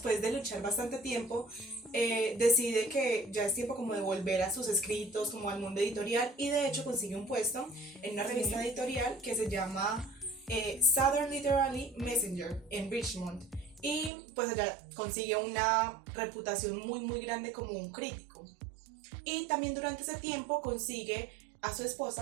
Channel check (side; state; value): left; drops out; at 14.1 s